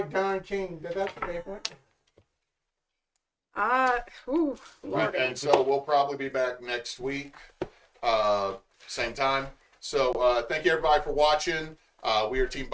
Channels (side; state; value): both; identical; correlation 1.00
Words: Don King. That's what they want. Lordy. And so we'll probably be back next week, same time. So thank you everybody for watching. We are Team